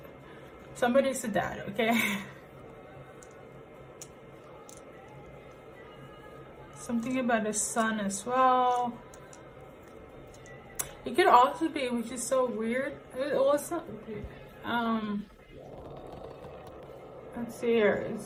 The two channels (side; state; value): both; identical; correlation 1.00